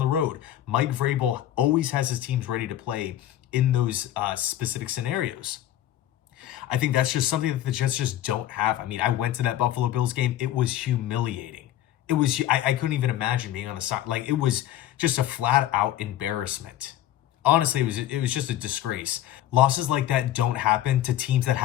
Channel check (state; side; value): quieter; right; 12.7 dB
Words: road. Mike Vrabel always has his teams ready to play in those specific scenarios. I think that's just something that the Jets just don't have. I mean, I went to that Buffalo Bills game. It was humiliating. It was, I couldn't even imagine being on the side. Like, it was just a flat out embarrassment. Honestly, it was just a disgrace. Losses like that don't happen to teams that